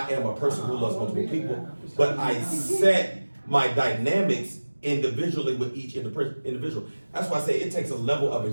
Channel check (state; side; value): inverted; both; correlation -1.00